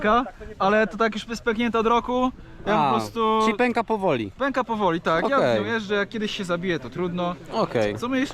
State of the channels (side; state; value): both; identical; correlation 1.00